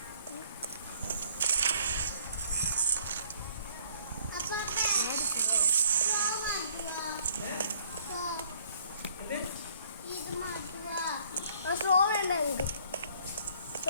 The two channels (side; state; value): both; inverted; correlation -0.61